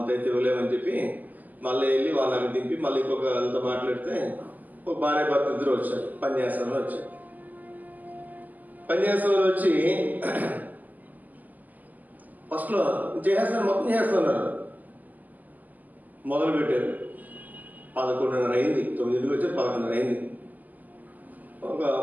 అయితే ఇవ్వలేమని చెప్పి మళ్ళీ వెళ్ళి వాళ్ళని దింపి మళ్ళీ ఇంకొక వాళ్ళతో మాట్లాడితే ఒక భార్య భర్త ఇద్దరు వచ్చారు, పనిచేస్తామని వచ్చారు. పనిచేస్తామని వచ్చి ఫస్ట్లో చేసేస్తాను, మొత్తం చేస్తున్నారు. మొదలు పెట్టారు. 11:30 అయింది, 9కి వచ్చి 11:30 అయింది. ఒక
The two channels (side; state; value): left; late; 0.082 ms